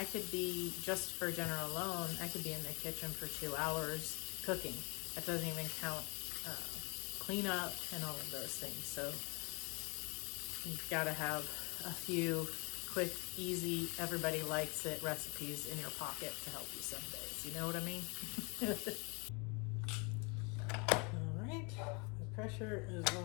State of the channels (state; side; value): quieter; right; 31.2 dB